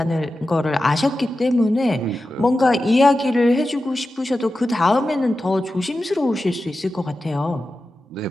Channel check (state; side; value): normal; both; correlation 0.93